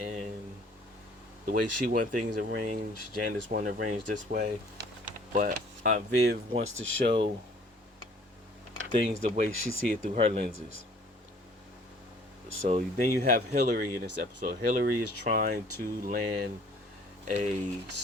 the way she want things arranged. Janice want to arrange this way, but Aunt Viv wants to show things the way she see it through her lenses. So then you have Hillary in this episode. Hillary is trying to land a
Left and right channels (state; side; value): normal; both; correlation 0.55